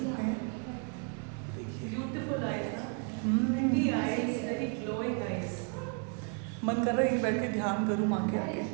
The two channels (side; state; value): left; quieter; 37.5 dB